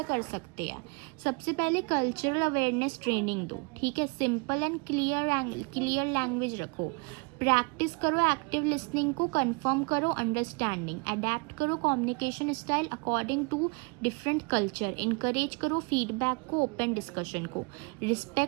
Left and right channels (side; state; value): left; quieter; 31.5 dB